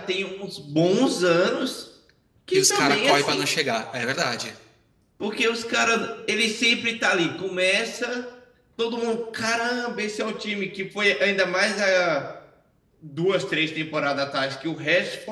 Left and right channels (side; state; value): both; identical; correlation 1.00